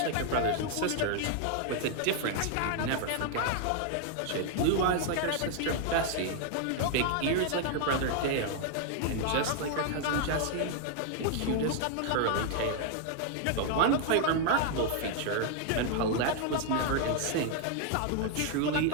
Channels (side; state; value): both; different; correlation 0.00